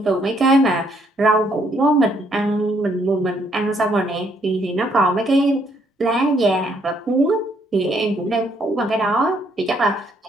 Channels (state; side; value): normal; both; correlation 0.69